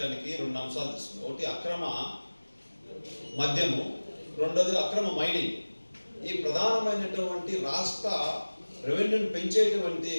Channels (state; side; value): inverted; both; correlation -1.00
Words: 2 అంశాలు తీసుకున్నారు. ఒకటి అక్రమ మద్యము, రెండోది అక్రమ మైనింగ్. ఈ ప్రధానమైనటువంటి రాష్ట్ర రెవెన్యూని పెంచేటువంటి